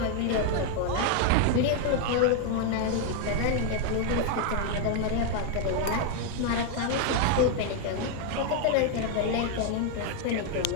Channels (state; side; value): different; both; correlation 0.01